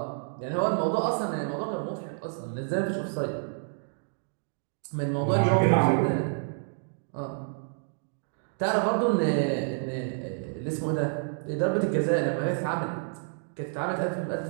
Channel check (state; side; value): silent; left; digital silence